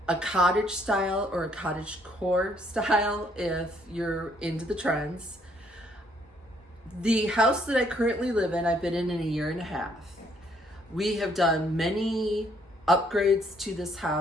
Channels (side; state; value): both; normal; correlation 0.67